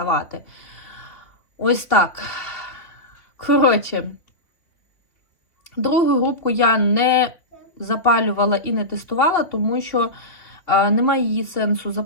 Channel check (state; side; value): late; right; 2.9 ms